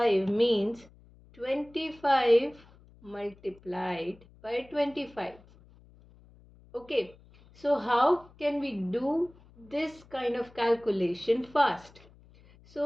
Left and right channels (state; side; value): noise; left; hum, 26 dB below the sound